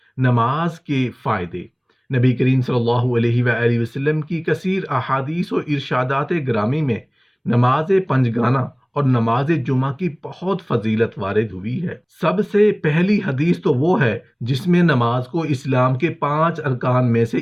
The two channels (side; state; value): both; identical; correlation 1.00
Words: نماز کے فائدے۔ نبی کریم صلی اللہ علیہ وآلہ وسلم کی کثیر احادیث و ارشادات گرامی میں نماز پنجگانہ اور نماز جمعہ کی بہت فضیلت وارد ہوئی ہے۔ سب سے پہلی حدیث تو وہ ہے جس میں نماز کو اسلام کے 5 ارکان میں سے